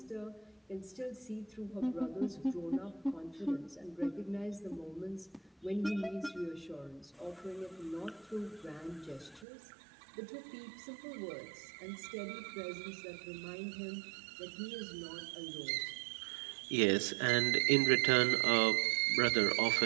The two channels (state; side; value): drops out; left; at 9.5 s